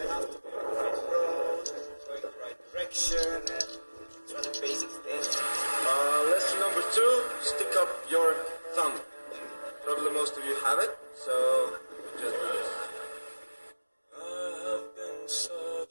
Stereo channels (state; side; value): inverted; both; correlation -1.00